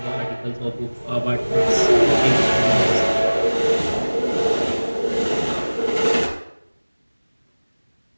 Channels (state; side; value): inverted; both; correlation -1.00